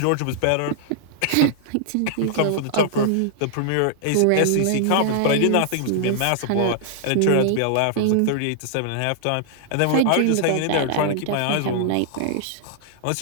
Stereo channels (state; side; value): different; both; correlation -0.01